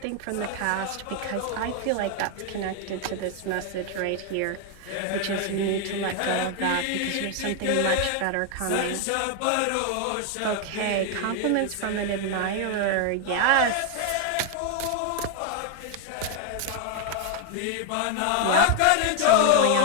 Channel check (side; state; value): both; different; correlation 0.01